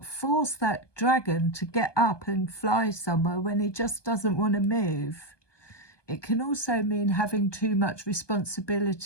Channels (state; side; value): late; right; 1.2 ms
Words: force that dragon to get up and fly somewhere when he just doesn't want to move. It can also mean having too much